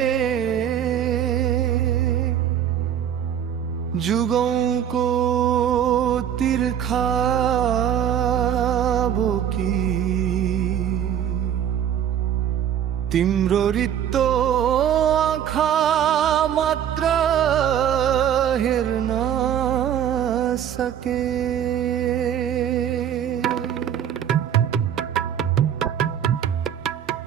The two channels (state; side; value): quieter; left; 9.5 dB